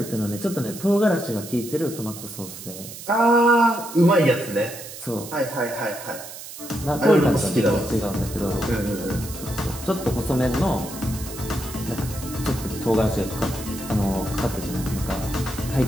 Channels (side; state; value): right; noise; hiss, 12 dB below the sound